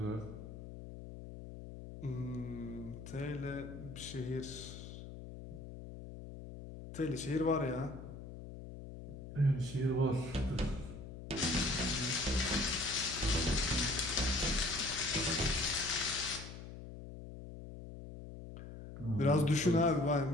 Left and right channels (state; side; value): noise; left; hum, 12 dB below the sound